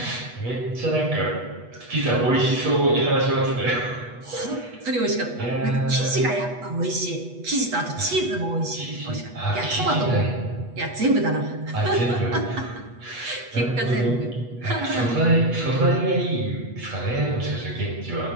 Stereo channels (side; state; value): left; late; 8.2 ms